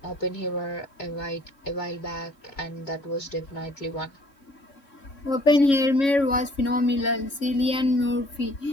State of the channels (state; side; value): late; right; 3.6 ms